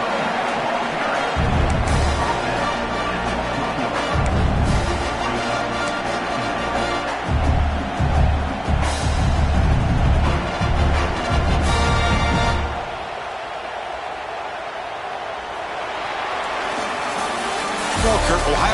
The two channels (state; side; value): identical; both; correlation 1.00